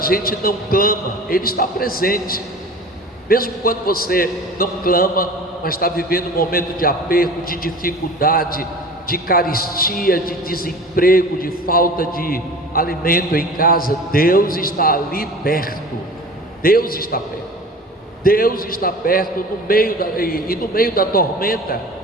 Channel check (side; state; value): both; normal; correlation 0.39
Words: não clama, Ele está presente. Mesmo quando você não clama, mas está vivendo um momento de aperto, de dificuldade, de carestia, de desemprego, de falta de alimento em casa, Deus está ali perto. Deus está perto. Deus está perto no meio da tormenta.